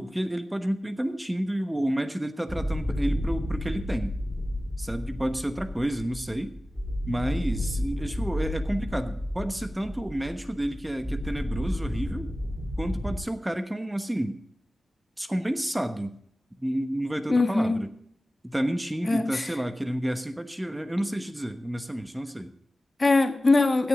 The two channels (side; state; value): both; normal; correlation 0.96